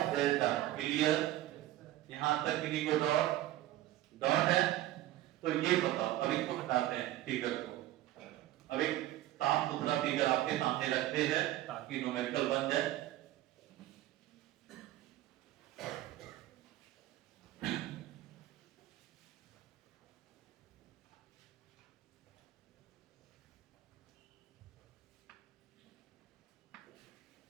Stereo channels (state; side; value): quieter; left; 14.9 dB